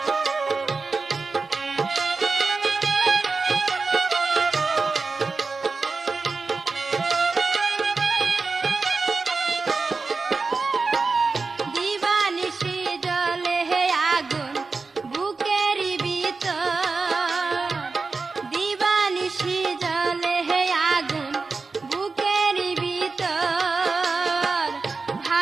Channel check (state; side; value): quieter; left; 4.2 dB